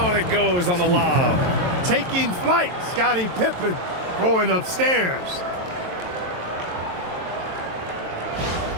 it goes on the lob. Taking flight, Scottie Pippen going upstairs.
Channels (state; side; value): late; left; 22 ms